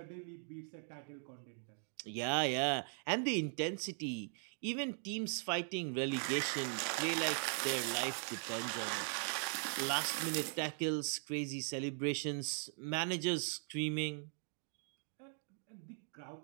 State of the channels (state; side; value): silent; left; 51 dB below the other